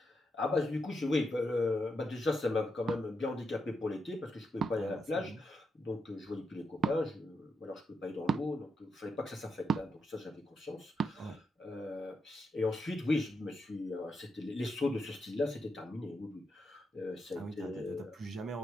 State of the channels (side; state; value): both; normal; correlation 0.82